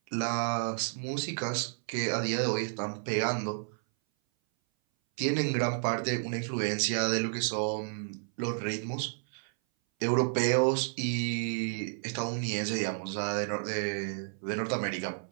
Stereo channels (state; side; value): silent; left; 57 dB below the other